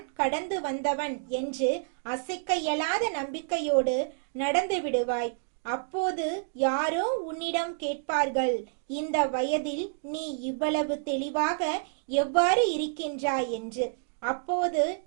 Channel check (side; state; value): left; silent; digital silence